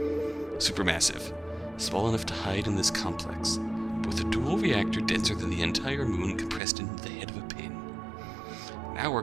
Supermassive. Small enough to hide in this complex, but with a dual reactor denser than the entire moon compressed into the head of a pin. An hour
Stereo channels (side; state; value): left; drops out; at 6.6 s